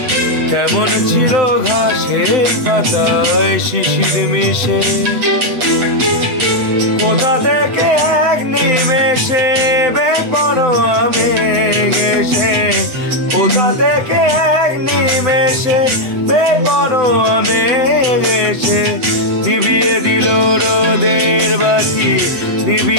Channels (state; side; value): late; left; 8.2 ms